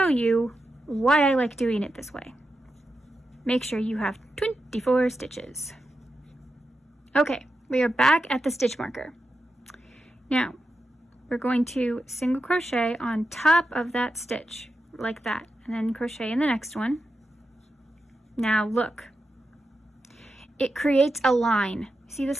you why I like doing it this way. Make sure you have 24 stitches. Okay, we are back at the stitch marker. Now, we're going to single crochet on top of that stitch, like that, and then crochet in the next one. Now look, it creates a line. See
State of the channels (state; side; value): normal; both; correlation 0.89